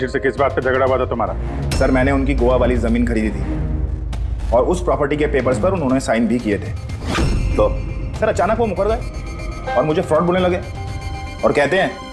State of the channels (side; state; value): both; identical; correlation 1.00